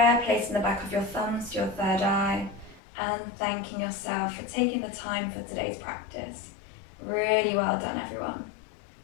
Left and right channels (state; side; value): drops out; right; at 2.8 s